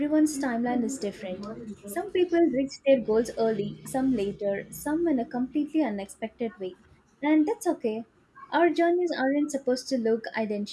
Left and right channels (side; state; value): both; identical; correlation 1.00